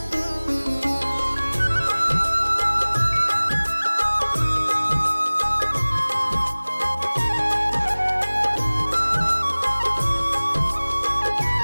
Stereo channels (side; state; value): both; inverted; correlation -1.00